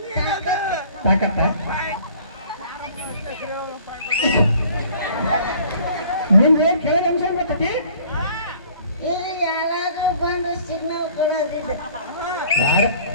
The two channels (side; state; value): both; inverted; correlation -0.53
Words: ತಾಕತ್ತ ನಿಮ್ಗೆ ಕೆಳಗೆ ಅಂಶ ಗೊತ್ತತಿ ಇಲ್ಲಿ ಯಾರಾದ್ರೂ ಬಂದು ಸಿಗ್ನಲ್ ಕೊಡೋದಿಲ್ಲ